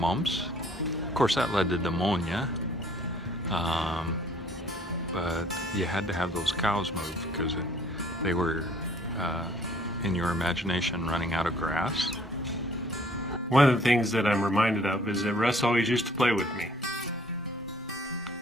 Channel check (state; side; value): normal; both; correlation 0.58